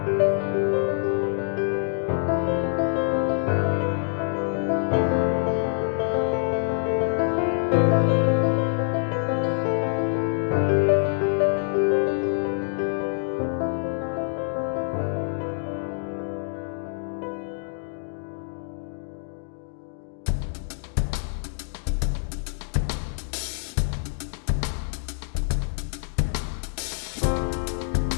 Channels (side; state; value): right; silent; digital silence